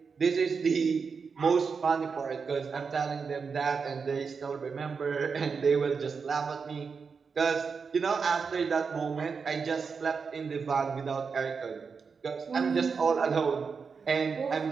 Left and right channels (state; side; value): quieter; left; 5.4 dB